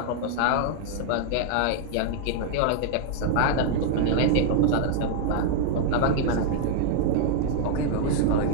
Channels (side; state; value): both; different; correlation 0.00